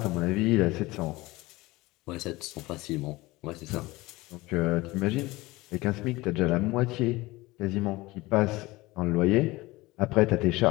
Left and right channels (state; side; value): quieter; right; 20.6 dB